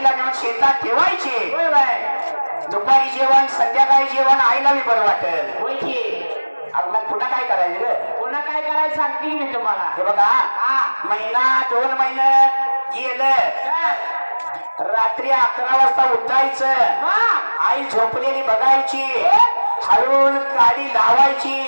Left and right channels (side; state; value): both; inverted; correlation -1.00